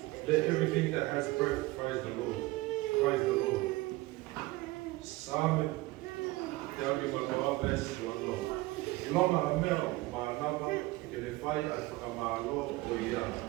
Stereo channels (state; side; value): quieter; left; 20.4 dB